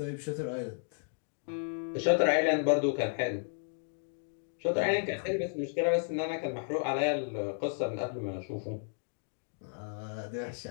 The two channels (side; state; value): right; silent; digital silence